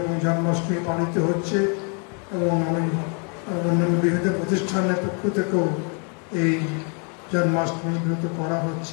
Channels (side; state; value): right; quieter; 38.6 dB